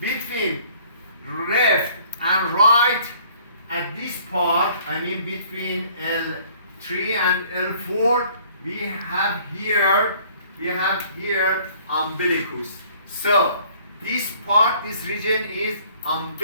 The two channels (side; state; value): both; inverted; correlation -0.57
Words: between left and right. At this part, I mean between L3 and L4, we have here umbilicus. So this part, this region is